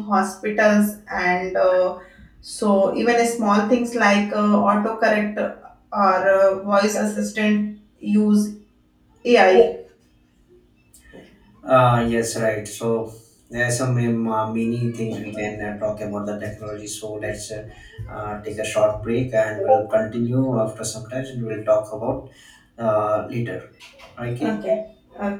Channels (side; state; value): both; identical; correlation 1.00